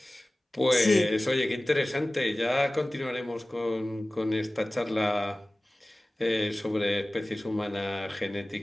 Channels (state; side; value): normal; both; correlation 0.98